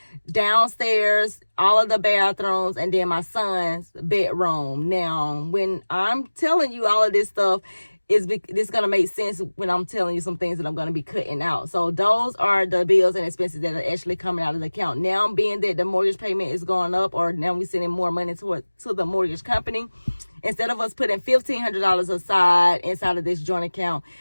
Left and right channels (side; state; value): both; inverted; correlation -1.00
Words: downstairs, all of the bathrooms, and then my son's bedroom. Now, when I'm telling you all of this stuff, this going to make sense when I'm telling you some things that I'm going to be cutting out. So those are the bills and expenses that are actually coming out of the account. Now, being that the mortgage payment is going up, or now we're sending more money to the mortgage company, instead of us putting $1,500 aside inside of this joint account,